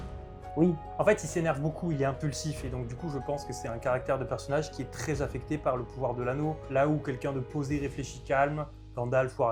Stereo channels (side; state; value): both; identical; correlation 1.00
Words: Oui. En fait, il s'énerve beaucoup, il est impulsif, et donc du coup, je pense que c'est un caractère de personnage qui est très affecté par le pouvoir de l'anneau. Là où quelqu'un de posé, réfléchi, calme, Gandalf ou